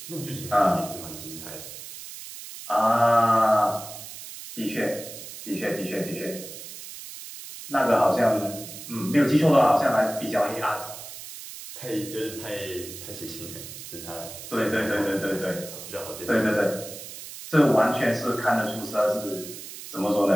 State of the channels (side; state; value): right; noise; hiss, 12 dB below the sound